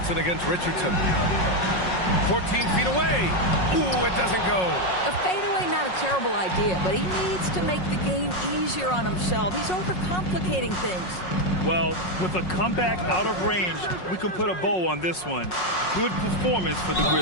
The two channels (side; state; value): right; late; 5.5 ms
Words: against Richardson. 14 feet away. Ooh, it doesn't go. A fadeaway, not a terrible idea, but he needs to make the game easier on himself. He's overcomplicating things. Well, with a comeback out of range, we can put a bow on this one. Good performance for the